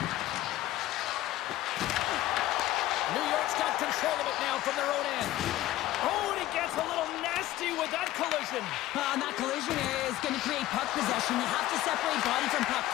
New York's got control of it now from their own end. Oh, and he gets a little nasty with that collision. And that collision area is going to create puck possession. You have to separate body from puck.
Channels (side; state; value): right; quieter; 15.1 dB